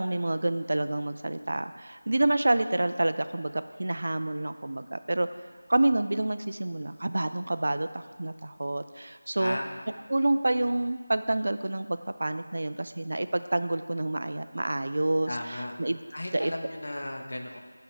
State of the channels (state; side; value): inverted; both; correlation -0.99